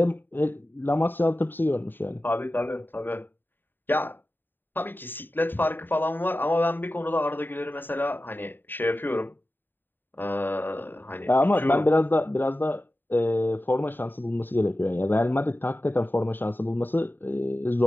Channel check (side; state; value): right; late; 0.093 ms